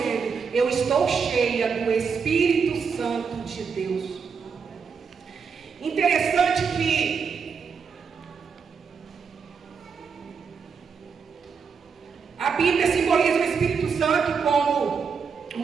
eu estou cheia do Espírito Santo de Deus. Interessante que a Bíblia simboliza o Espírito Santo como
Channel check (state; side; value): quieter; left; 5.9 dB